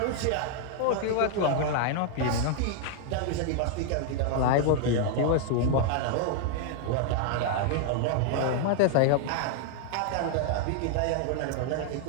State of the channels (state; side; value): different; both; correlation 0.00